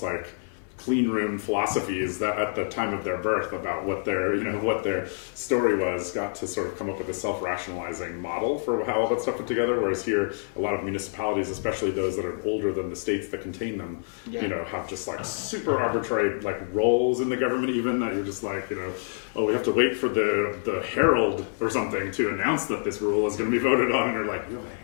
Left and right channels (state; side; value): silent; right; 60 dB below the other